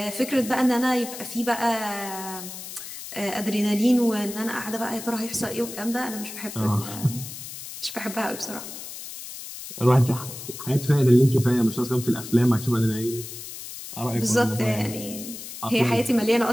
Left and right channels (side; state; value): left; noise; hiss, 11 dB below the sound